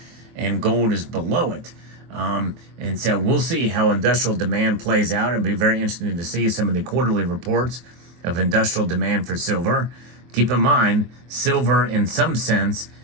and gold is below it. And so we'll see how industrial demand plays out. It'll be very interesting to see some of the quarterly reports of industrial demand for silver. Keep in mind, silver in some sense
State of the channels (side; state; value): left; late; 24 ms